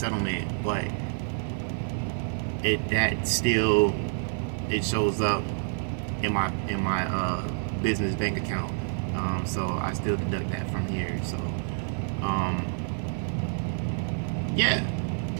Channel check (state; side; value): silent; left; 59 dB below the other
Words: but it shows up in my business bank account. So I still deduct that from here. So yeah.